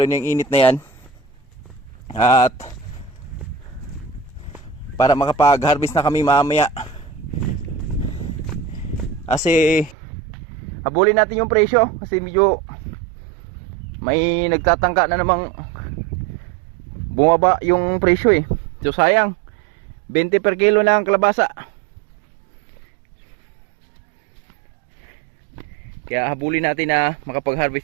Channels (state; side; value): drops out; left; at 10.0 s